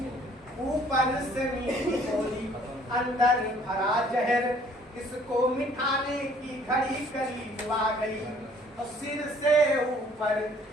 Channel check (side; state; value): both; normal; correlation 0.58